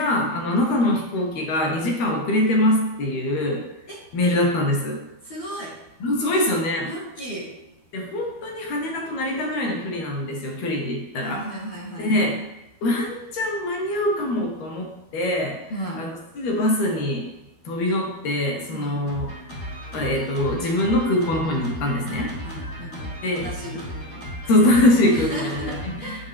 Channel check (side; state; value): right; late; 12 ms